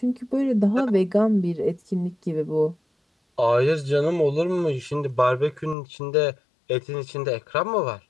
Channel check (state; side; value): drops out; right; at 5.8 s